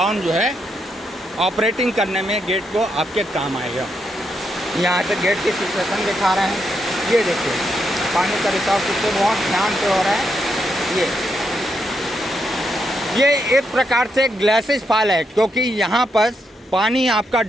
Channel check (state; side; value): normal; both; correlation 0.81